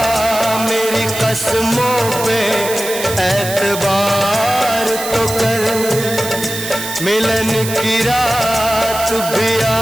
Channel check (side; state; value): right; noise; hiss, 8 dB below the sound